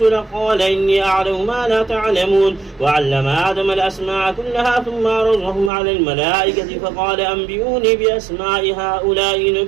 لك قال إني أعلم ما لا تعلمون. وعلم آدم الأسماء كلها ثم عرضهم على الملائكة فقال أنبئوني بأسماء هؤلاء إن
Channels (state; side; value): drops out; left; at 5.7 s